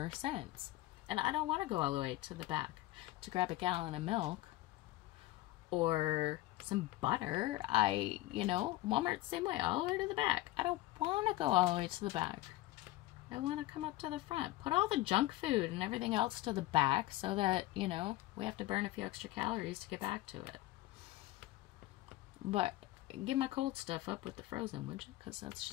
sense. And I don't want to go all the way to the back to grab a gallon of milk or some butter. Walmart's the same way, all the way to the back. I don't want to go all the way to the back. I want to come up to the front. Put all the junk food and everything else to the back so that, we have to burn a few extra calories to get back to it. But get my cold stuff up with the frozen, would you? Because that's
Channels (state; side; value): quieter; right; 17.2 dB